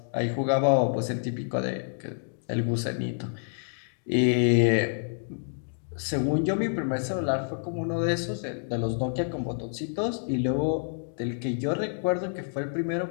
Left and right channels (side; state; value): right; silent; digital silence